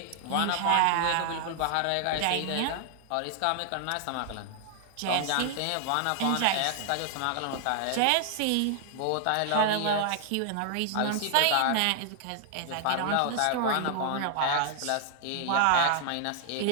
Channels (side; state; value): both; different; correlation 0.00